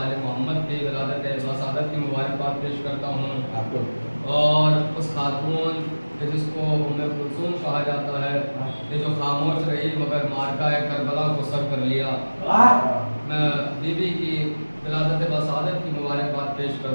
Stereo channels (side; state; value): both; inverted; correlation -1.00